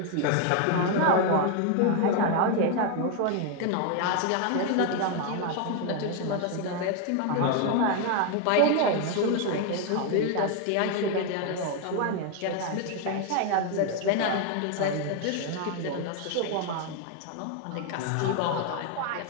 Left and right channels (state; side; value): different; both; correlation 0.01